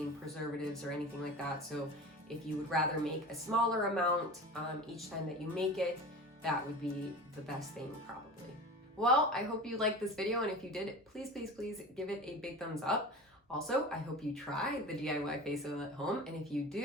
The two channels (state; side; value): normal; both; correlation 0.34